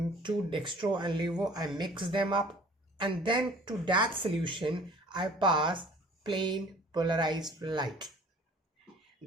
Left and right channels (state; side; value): normal; both; correlation 0.50